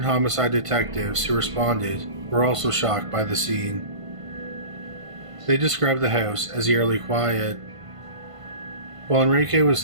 homicide detectives who responded were also shocked by the scene. They described the house as eerily quiet. While Enrique was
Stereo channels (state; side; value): late; left; 1.5 ms